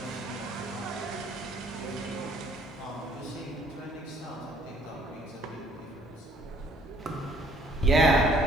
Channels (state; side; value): normal; both; correlation 0.61